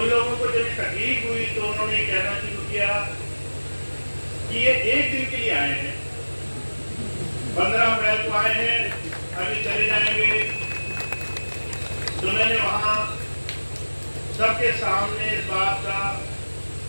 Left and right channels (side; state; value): both; inverted; correlation -1.00